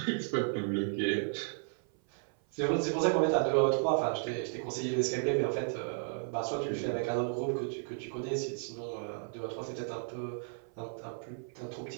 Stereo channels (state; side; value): silent; left; 55 dB below the other